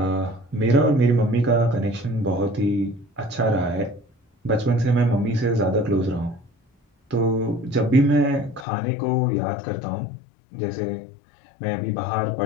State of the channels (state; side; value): drops out; right; at 8.7 s